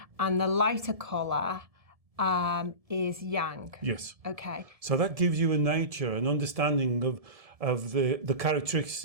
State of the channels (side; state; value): left; late; 1.7 ms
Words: And the lighter colour is Yang. Yes. Okay. So that gives you a nature, an understanding of the